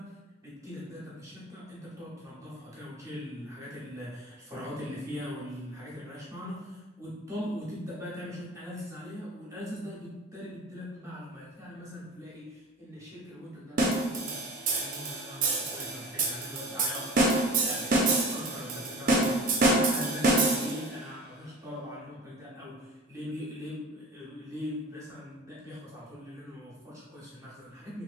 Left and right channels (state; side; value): normal; both; correlation 0.37